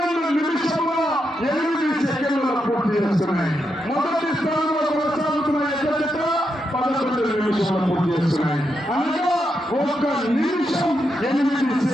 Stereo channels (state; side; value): normal; both; correlation 0.83